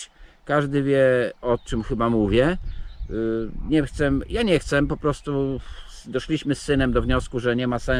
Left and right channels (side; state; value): both; identical; correlation 1.00